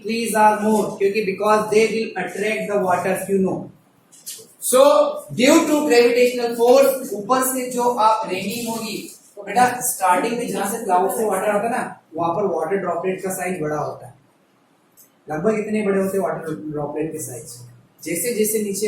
trees are more, क्योंकि because they will attract the water, you know. So due to gravitational force, ऊपर से जो आप रेनिंग होगी, तो बेटा स्टार्टिंग में जहां से क्लाउड से वाटर आता है ना, वहां पर वाटर ड्रॉपलेट का साइज बड़ा होता है। लगभग इतने बड़े होते हैं वाटर ड्रॉपलेट के साइज। जैसे जैसे नीचे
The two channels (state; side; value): identical; both; correlation 1.00